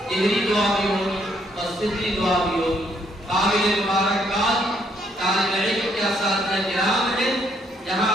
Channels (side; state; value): both; normal; correlation 0.70